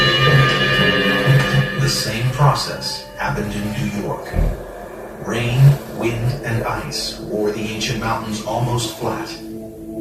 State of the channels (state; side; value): identical; both; correlation 1.00